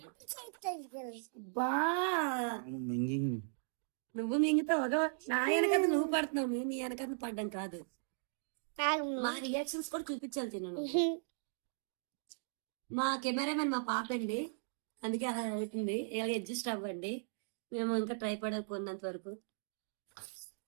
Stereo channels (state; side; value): silent; left; digital silence